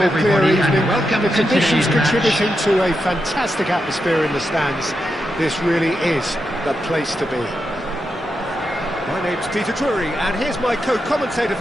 clear evening. The conditions contributing to a fantastic atmosphere in the stands. This really is the place to be. My name's Peter Drury, and here's my co-commentator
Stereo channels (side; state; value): both; normal; correlation 0.86